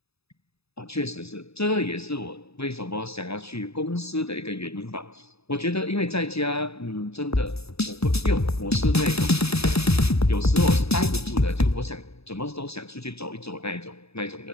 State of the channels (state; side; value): late; right; 0.78 ms